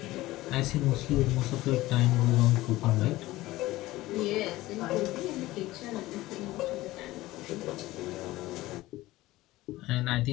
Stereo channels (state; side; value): quieter; right; 17.8 dB